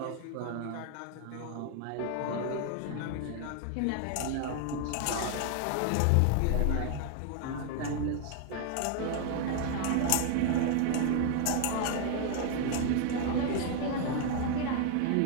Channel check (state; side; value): different; both; correlation 0.00